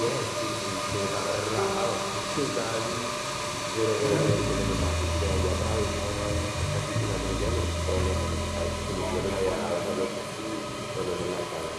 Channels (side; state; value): both; identical; correlation 1.00